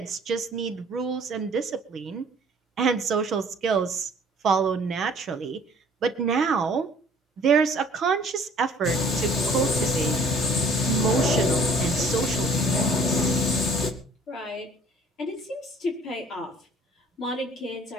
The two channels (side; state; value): both; normal; correlation 0.54